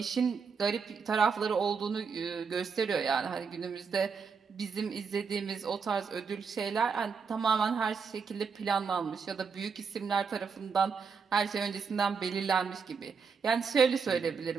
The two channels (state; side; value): quieter; left; 5.7 dB